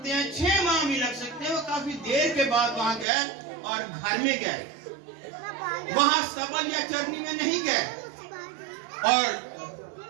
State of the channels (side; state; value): left; drops out; at 3.1 s